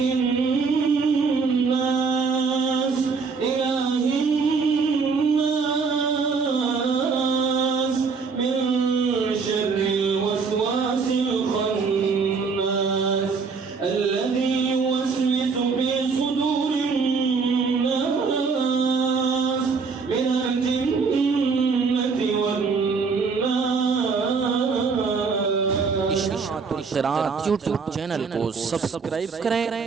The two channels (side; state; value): left; quieter; 5.0 dB